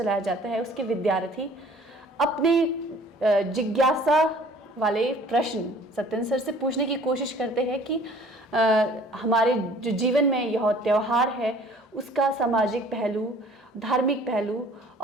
जाता है उसके विद्यार्थी अपने जिज्ञासा वाले प्रश्न सत्यन सर से पूछने की कोशिश करते हैं कि हमारे जो जीवन में यह त्यौहार है उसका सामाजिक पहलू, धार्मिक पहलू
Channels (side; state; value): both; normal; correlation 0.52